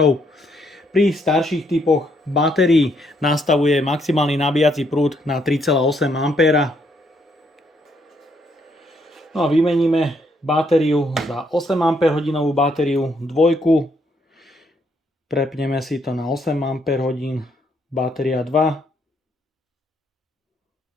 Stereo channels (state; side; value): normal; both; correlation 0.72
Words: Pri starších typoch batérií nastavuje maximálny nabíjací prúd na 3,8 A. No a vymeníme batériu za 8 Ah batériu dvojku. Prepneme si to na 8 Ah, batéria 2.